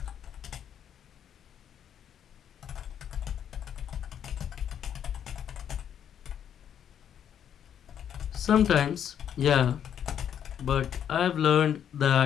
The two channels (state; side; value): quieter; right; 9.2 dB